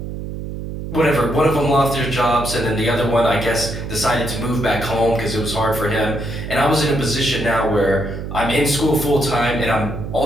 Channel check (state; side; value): noise; right; hum, 7 dB below the sound